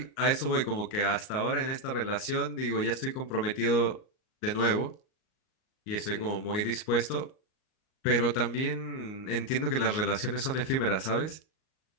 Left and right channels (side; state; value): right; late; 38 ms